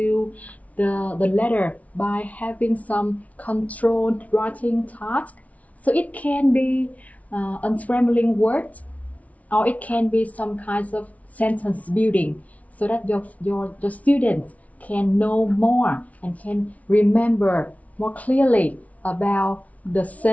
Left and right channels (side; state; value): right; late; 0.069 ms